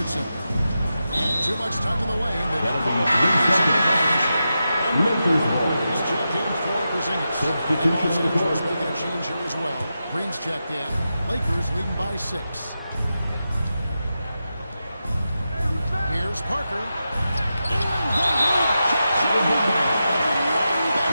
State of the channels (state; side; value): inverted; both; correlation -0.90